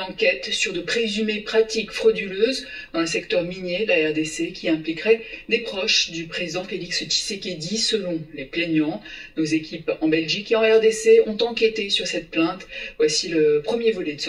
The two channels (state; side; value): identical; both; correlation 1.00